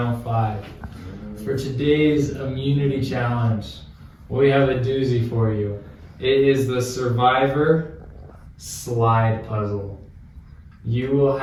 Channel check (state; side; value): identical; both; correlation 1.00